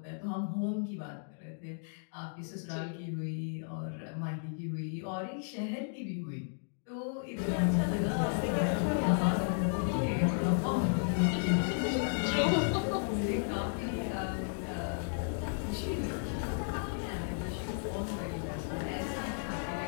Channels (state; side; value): silent; right; digital silence